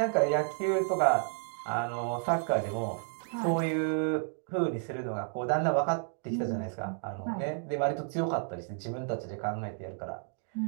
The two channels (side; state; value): left; silent; 57 dB below the other